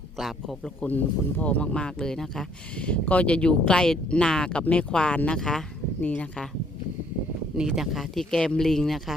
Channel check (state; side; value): normal; both; correlation 0.64